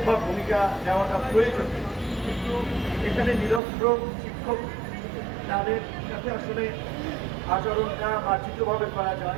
বা ভূমিকা নেওয়াটা প্রয়োজন, কিন্তু এখানে নিরস্ত্র শিক্ষক তাদের সাথে আসলে আচরণটা মার্জিতভাবে করা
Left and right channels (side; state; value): left; drops out; at 3.6 s